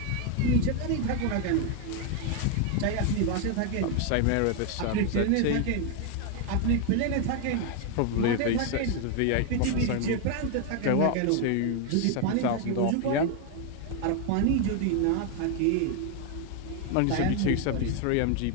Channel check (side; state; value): both; different; correlation 0.01